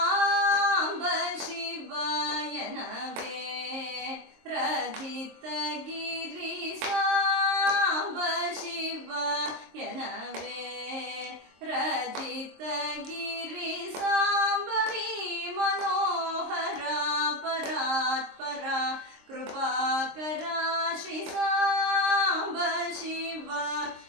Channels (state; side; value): late; left; 23 ms